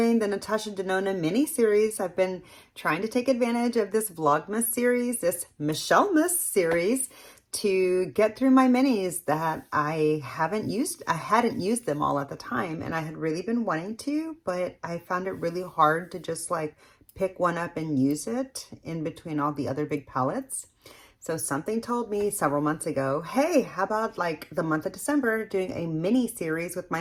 the Natasha Denona mini-series. I've been trying to take advantage of this Vlogmas series, this Michellemas series, to get through my minis that I hadn't used them all at the time, and I had really been wanting to, but I found it really hard to just like pick one up and use it in between all the other big palettes. So something told me several months ago, hey, how about like the month of December doing a mini series with my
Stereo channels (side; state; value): both; identical; correlation 1.00